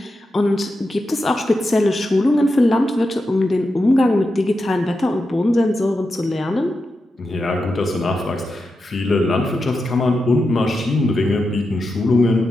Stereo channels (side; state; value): both; normal; correlation 0.89